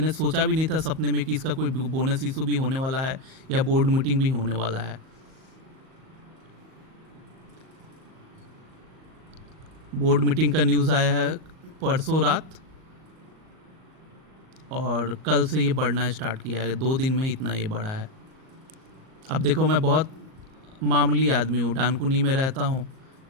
सोचा भी नहीं था सपने में कि इसका कोई बोनस इशू भी होने वाला है या बोर्ड मीटिंग भी होने वाला है। बोर्ड मीटिंग का न्यूज़ आया है परसों रात और कल से ये बढ़ना स्टार्ट किया है। 2 दिन में इतना ये बढ़ा है। अब देखो, मैं बहुत मामूली आदमी हूँ, डानकुनी में रहता हूँ।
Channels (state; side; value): late; left; 38 ms